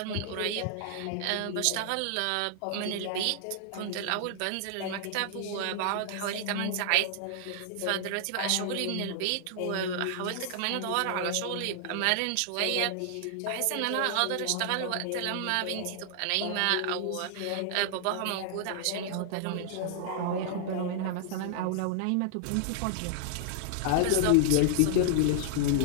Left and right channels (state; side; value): different; both; correlation -0.01